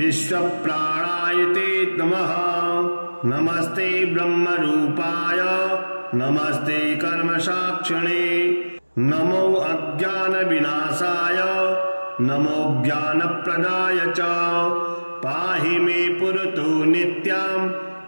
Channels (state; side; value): inverted; both; correlation -1.00